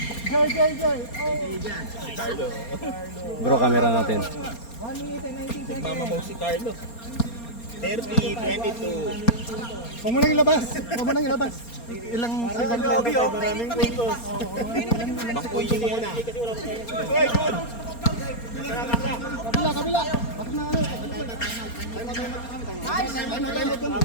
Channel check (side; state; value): right; late; 4.3 ms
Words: Carlo. Bro, camera natin. 1 minute and 19 seconds. Mama mo si Carlo. 30, 22. Huwag mo nang ilabas. Ilang second lang. Maraming puntos. Bangkuyin mo muna. Uy, good! Kabila. Bakit na ano?